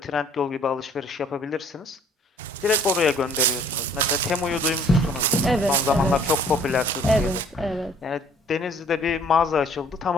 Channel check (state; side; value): normal; both; correlation 0.56